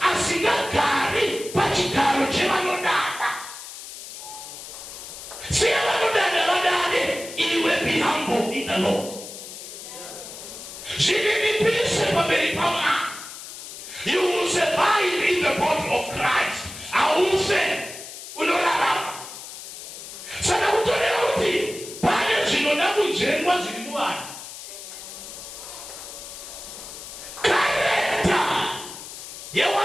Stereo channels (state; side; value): noise; left; hiss, 12 dB below the sound